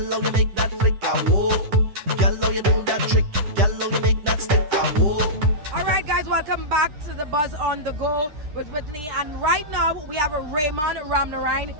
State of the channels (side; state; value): left; late; 10 ms